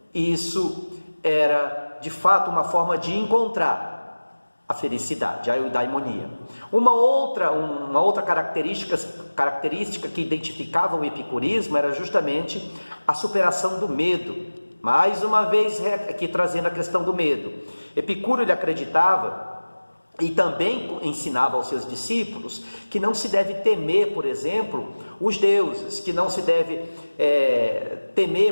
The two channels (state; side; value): inverted; both; correlation -1.00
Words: isso era, de fato, uma forma de encontrar a felicidade, a eudaimonia. Uma outra característica que identificava o epicurismo era justamente a superação do medo. Mais uma vez aqui trazendo a questão do medo. Epicuro, ele acreditava e também ensinava aos seus discípulos que não se deve temer, por exemplo, os deuses, que não se deve